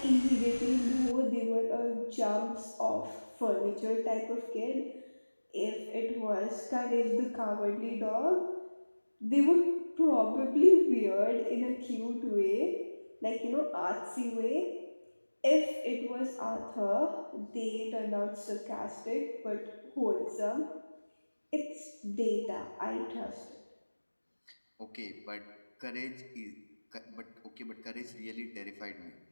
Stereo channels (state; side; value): inverted; both; correlation -1.00